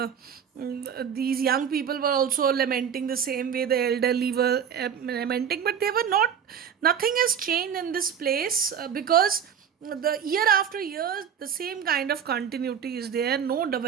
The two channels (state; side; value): quieter; left; 8.1 dB